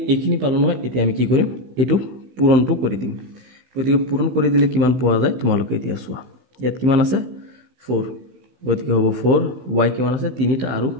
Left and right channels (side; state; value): left; late; 15 ms